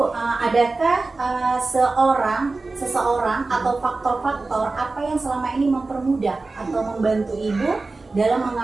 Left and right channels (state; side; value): quieter; left; 3.6 dB